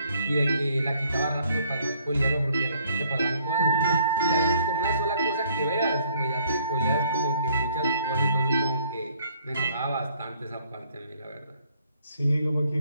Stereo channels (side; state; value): both; inverted; correlation -0.63